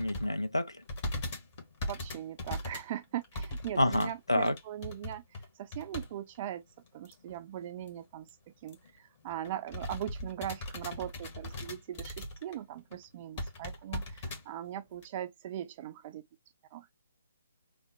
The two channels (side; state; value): both; inverted; correlation -0.70